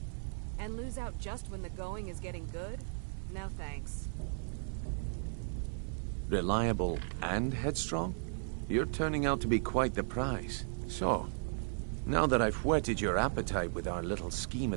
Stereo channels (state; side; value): silent; left; 54 dB below the other